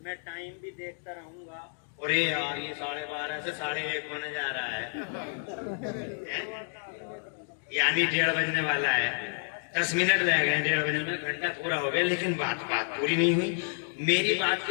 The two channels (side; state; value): right; silent; 58 dB below the other